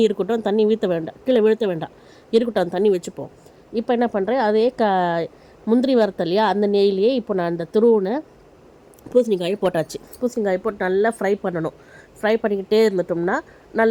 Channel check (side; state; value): both; identical; correlation 1.00